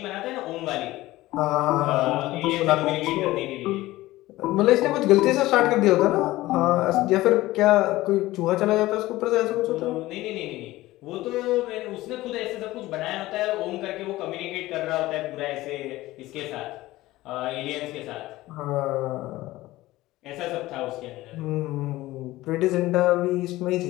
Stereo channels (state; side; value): quieter; right; 17.5 dB